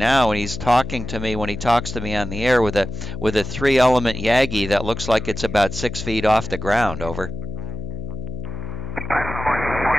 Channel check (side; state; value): left; noise; hum, 8 dB below the sound